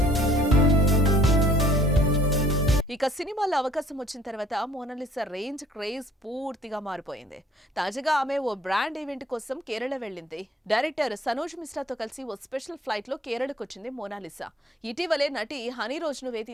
ఇక సినిమాలో అవకాశం వచ్చిన తర్వాత మోనాలిసా రేంజ్, క్రేజ్ పూర్తిగా మారిపోయింది. తాజాగా ఆమె ఓ బ్రాండ్ ఈవెంట్ కోసం కేరళ వెళ్ళింది. డైరెక్టర్ సనోజ్ మిశ్రాతో కలిసి ఓ స్పెషల్ ఫ్లైట్ లో కేరళకు వచ్చింది మోనాలిసా. ఇటీవలే నటి హనీ రోజును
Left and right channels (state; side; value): normal; both; correlation 0.58